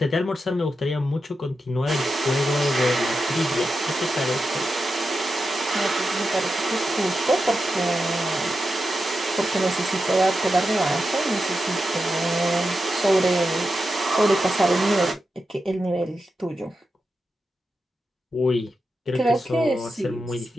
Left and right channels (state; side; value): normal; both; correlation 0.89